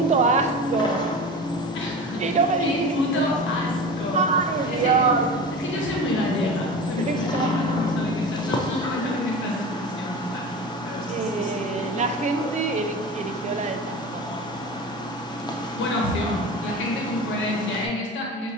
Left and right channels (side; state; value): both; normal; correlation 0.32